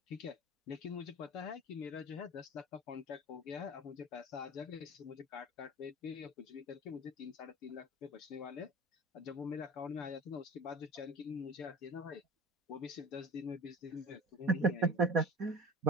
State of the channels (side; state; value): both; normal; correlation 0.37